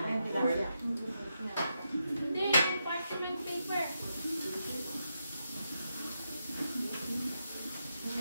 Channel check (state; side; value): inverted; both; correlation -0.84